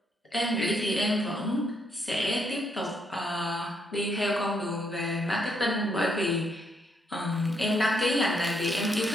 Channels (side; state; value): both; normal; correlation 0.75